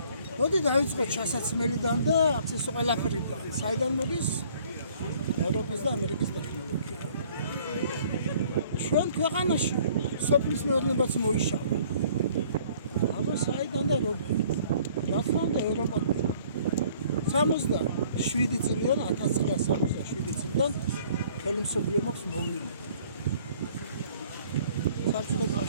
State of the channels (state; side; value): inverted; both; correlation -0.56